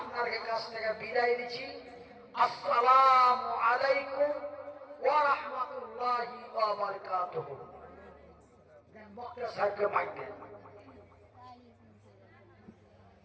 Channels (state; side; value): identical; both; correlation 1.00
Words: কাছ থেকে বিদায় দিচ্ছি। আসসালামু আলাইকুম ওয়া রাহমাতুল্লাহি ওয়া বারাকাতুহু। বক্তা সাহেবকে মাইক দেন।